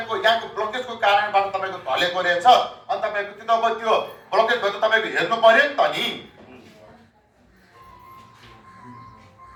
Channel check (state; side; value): identical; both; correlation 1.00